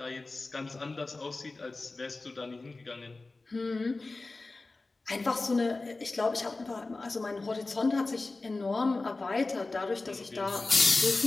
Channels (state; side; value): quieter; right; 3.4 dB